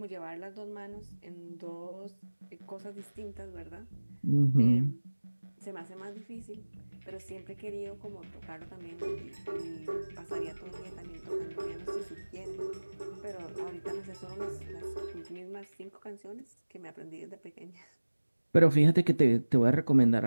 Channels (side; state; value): both; inverted; correlation -1.00